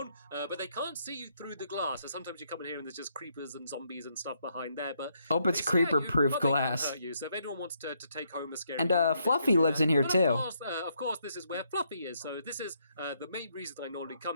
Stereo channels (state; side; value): inverted; both; correlation -0.75